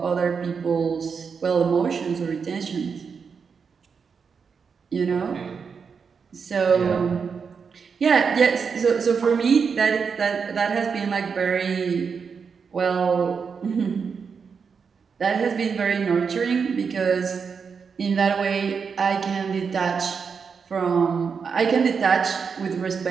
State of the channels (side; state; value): left; quieter; 5.9 dB